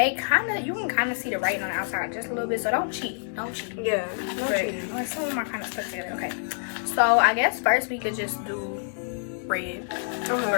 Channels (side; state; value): right; silent; digital silence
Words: can kind of see the writing on the outside just a little bit, so don't cheat. Yeah, But some of them are kind of stuck together. Okay, so I guess first we could just do red